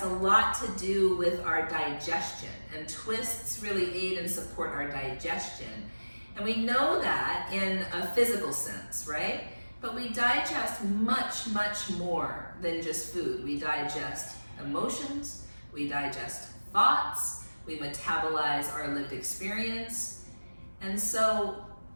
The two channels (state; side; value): inverted; both; correlation -1.00